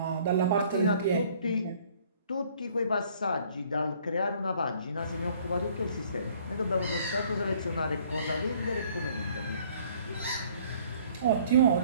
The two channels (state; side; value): inverted; both; correlation -0.58